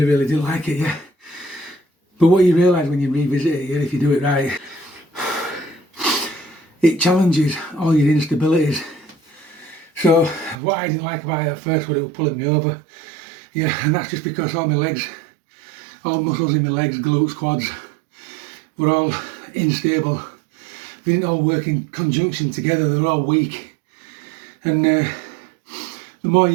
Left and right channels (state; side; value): drops out; left; at 10.6 s